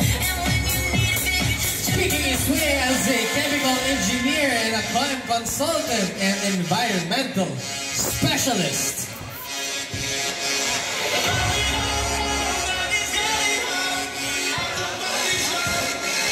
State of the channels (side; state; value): both; identical; correlation 1.00